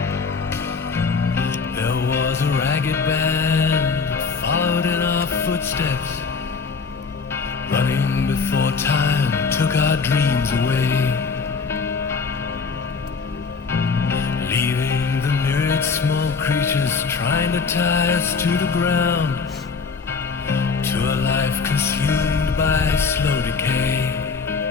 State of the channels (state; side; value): quieter; right; 5.0 dB